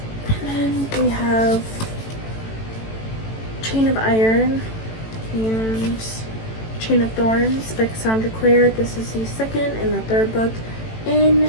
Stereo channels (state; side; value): late; right; 18 ms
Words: And then we have Chain of Iron and Chain of Thorns by Cassandra Clare. This is the second and the third book in